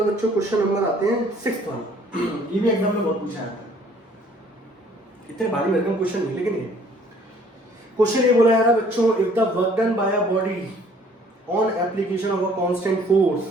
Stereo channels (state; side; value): normal; both; correlation 0.57